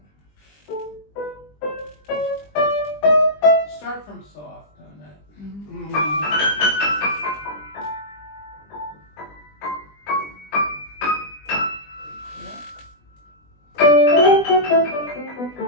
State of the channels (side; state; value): right; late; 20 ms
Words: Start from soft on that.